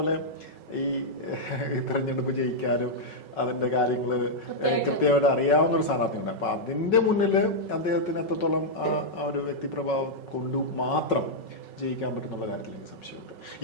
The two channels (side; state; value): right; late; 5.4 ms